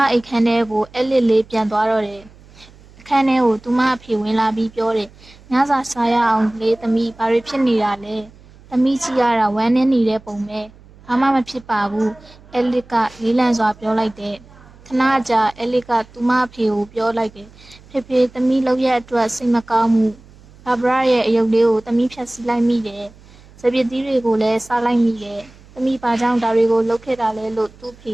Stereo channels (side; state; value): right; noise; hum, 24 dB below the sound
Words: အိတ်ခမ်းထဲကိုAliceလေးပြန်သွားတော့တယ်။အခန်းထဲကိုသူမအဖေဝင်လာပြီးပြောတယ်။ညစာစားရအောင်လေသမီးဘာတွေဖြစ်နေတာလဲ။သမီးကြည့်ရတာဝမ်းနည်းနေတဲ့ပုံပဲ။ဘာမှမဖြစ်ပါဘူး။ Alice ကလေးလံစွာပြောလိုက်တယ်။ခဏကြာAlice ကသူမအဖေကိုပြောလိုက်တယ်။ဖေဖေသမီးလုပ်ရက်အတွက်စိတ်မကောင်းဘူး။ဘာဘရာရဲ့အယုတ်လေးကိုသမီးဖြတ်စည်းလိုက်မိတယ်။စပစ်သီးတွေကိုလည်းစားလိုက်မိတယ်။သမီးဘာကြောင့်ဒါတွေကိုလုပ်ခဲ့တာလဲလို့သူ့ဖေ